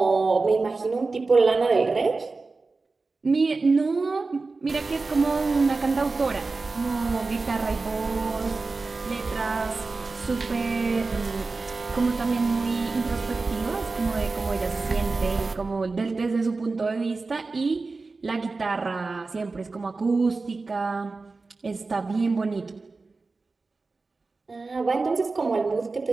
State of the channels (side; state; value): left; quieter; 3.9 dB